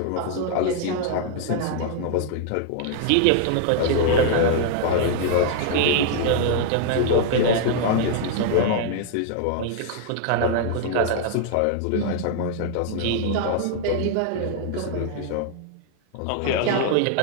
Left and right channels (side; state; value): both; different; correlation -0.01